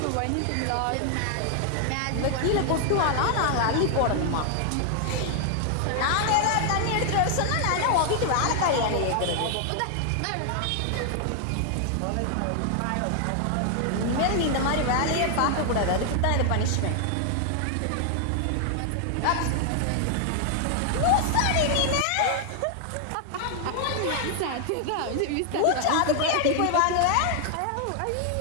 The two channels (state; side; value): different; both; correlation 0.00